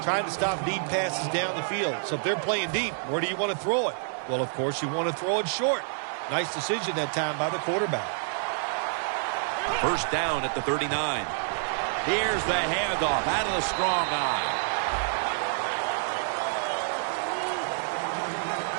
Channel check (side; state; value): left; silent; digital silence